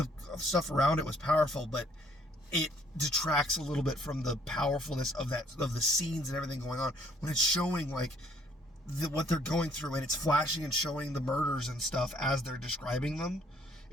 stuff around it was powerful, but it detracts a little bit from the powerfulness of the scenes and everything going on when it's showing like what they're going through, and it's flashing and showing the murders and stuff as they're describing them.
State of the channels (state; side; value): normal; both; correlation 0.64